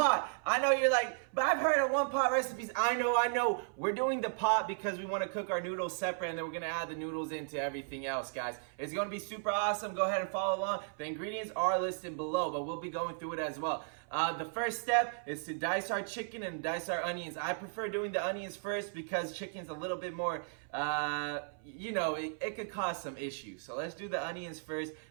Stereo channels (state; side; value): silent; left; 54 dB below the other